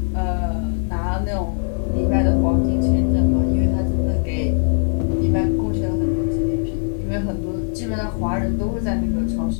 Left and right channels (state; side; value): silent; right; 64 dB below the other